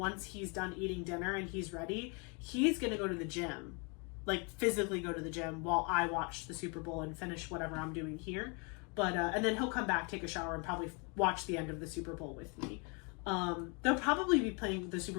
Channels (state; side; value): quieter; right; 33.4 dB